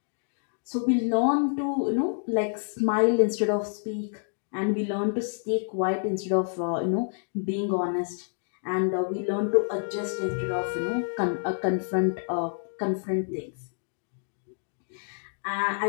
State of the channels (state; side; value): silent; right; digital silence